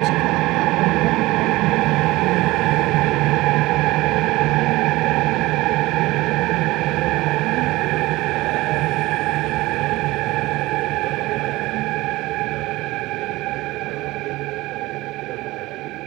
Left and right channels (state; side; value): quieter; left; 19.5 dB